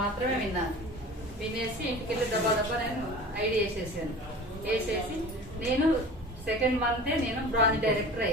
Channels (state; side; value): normal; both; correlation 0.39